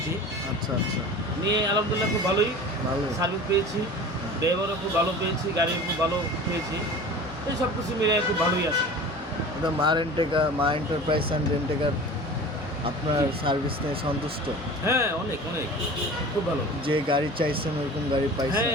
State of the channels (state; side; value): normal; both; correlation 0.38